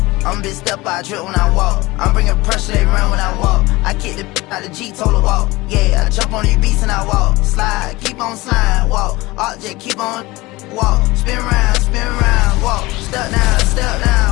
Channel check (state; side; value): quieter; right; 21.1 dB